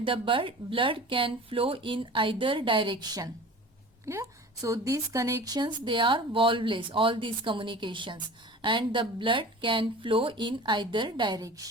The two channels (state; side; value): normal; both; correlation 0.39